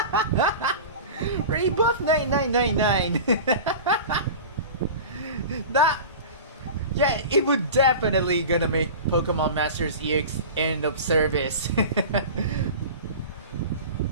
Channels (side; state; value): both; inverted; correlation -0.34